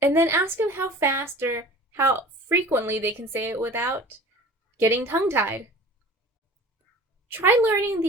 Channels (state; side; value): normal; both; correlation 0.42